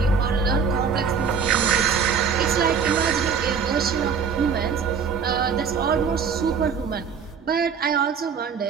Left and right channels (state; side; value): quieter; left; 6.3 dB